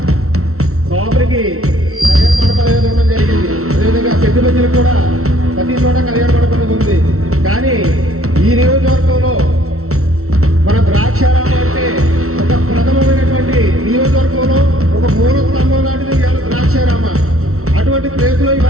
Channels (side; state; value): left; late; 0.63 ms